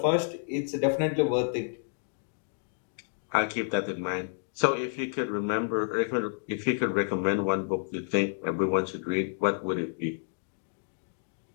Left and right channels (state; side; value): silent; right; digital silence